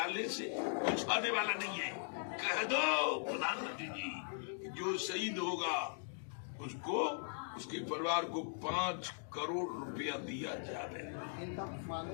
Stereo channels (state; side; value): silent; right; digital silence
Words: से कुछ होने वाला नहीं है। कह दो प्रधानमंत्री जी, जो शहीद होगा उसको, उसके परिवार को 5 करोड़ रुपया दिया जाए।